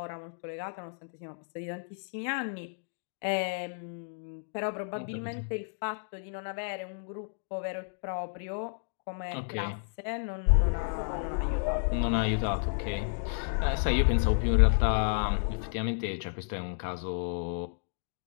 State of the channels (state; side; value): silent; right; digital silence